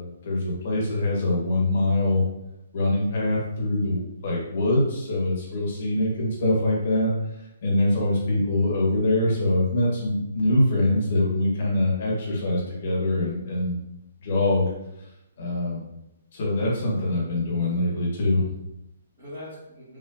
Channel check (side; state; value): both; inverted; correlation -0.75